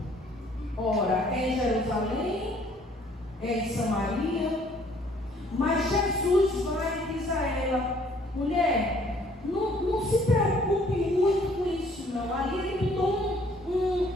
Ora, é em Jerusalém, é em Samaria. Mas Jesus vai e diz a ela: mulher, não se preocupe muito com isso não. Ali ele botou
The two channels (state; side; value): normal; both; correlation 0.60